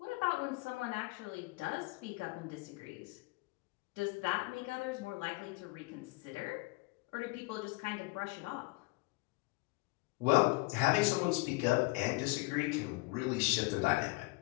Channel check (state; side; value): quieter; right; 24.8 dB